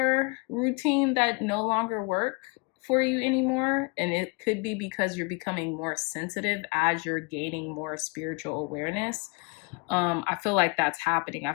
routine that no longer work for you anymore. And it could be because you're becoming more sensitive as you're gaining more spiritual awareness. I feel like that's happening. I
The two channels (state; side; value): quieter; right; 29.7 dB